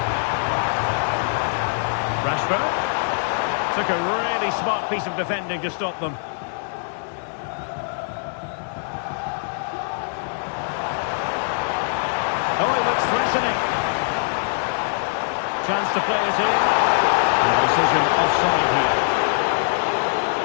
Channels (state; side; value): silent; right; digital silence